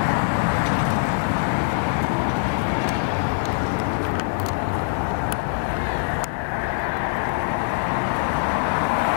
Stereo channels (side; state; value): right; silent; digital silence